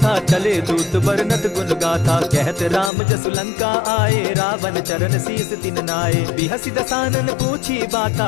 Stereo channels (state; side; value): drops out; right; at 2.9 s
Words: चले दूत बरनत गुण गाथा। कहत राम जसु लंका आए, रावण चरण शीस तिन नाये। बिहसि दसानन पूछी बाता,